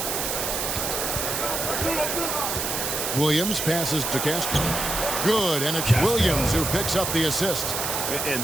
Williams passes to Castro. Good, and it's Williams who picks up the assist.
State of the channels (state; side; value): noise; right; hiss, 1 dB below the sound